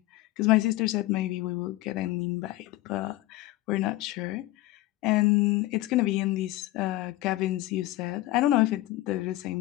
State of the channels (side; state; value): right; quieter; 17.5 dB